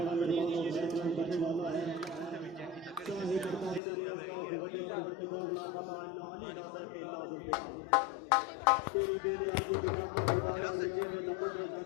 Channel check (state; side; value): drops out; right; at 3.8 s